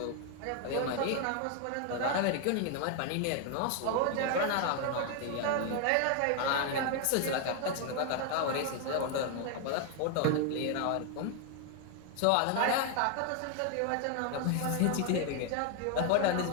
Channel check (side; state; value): both; different; correlation 0.00